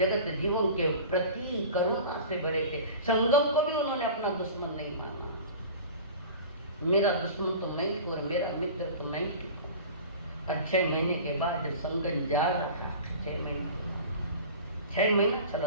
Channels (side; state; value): both; inverted; correlation -0.37